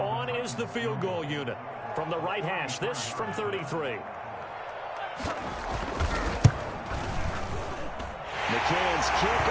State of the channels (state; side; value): identical; both; correlation 1.00